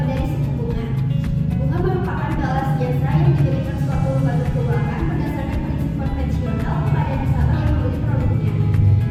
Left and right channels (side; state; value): both; identical; correlation 1.00